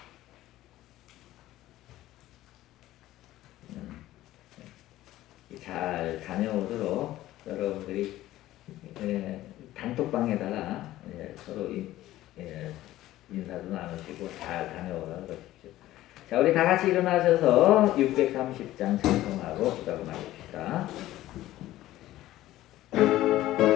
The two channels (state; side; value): quieter; right; 15.2 dB